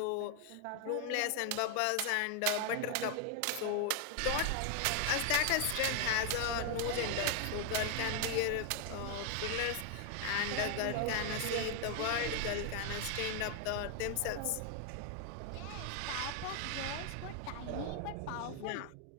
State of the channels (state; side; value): different; both; correlation 0.00